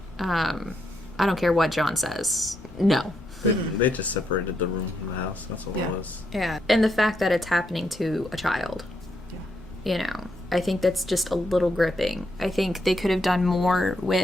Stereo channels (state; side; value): normal; both; correlation 0.79